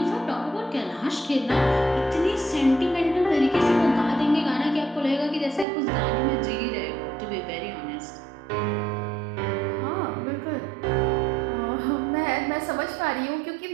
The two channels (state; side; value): drops out; left; at 5.7 s